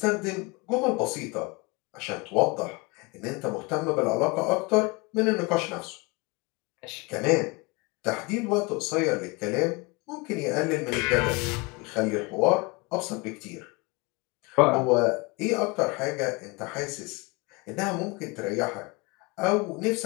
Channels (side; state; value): right; quieter; 27.0 dB